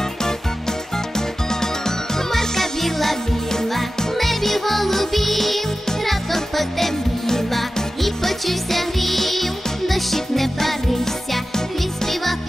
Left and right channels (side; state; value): both; normal; correlation 0.94